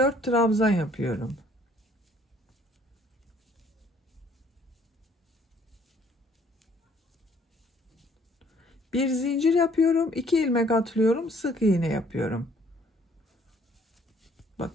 trabzan yapıyorum. Bir zincir yapıyorum. 2 ilmek atlıyorum. Sık iğne yapıyorum. Bak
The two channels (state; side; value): normal; both; correlation 0.61